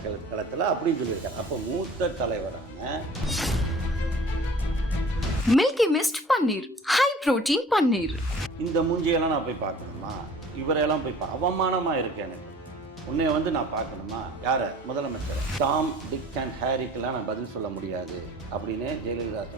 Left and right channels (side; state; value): both; normal; correlation 0.47